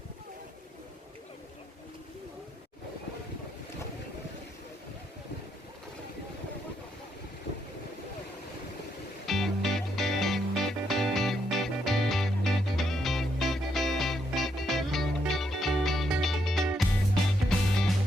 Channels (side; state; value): both; normal; correlation 0.77